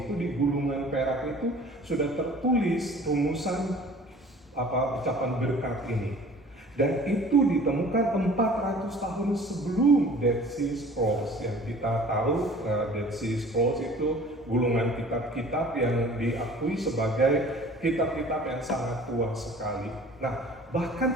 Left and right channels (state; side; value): normal; both; correlation 0.47